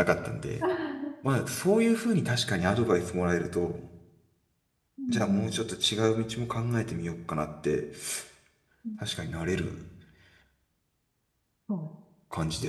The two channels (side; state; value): both; identical; correlation 1.00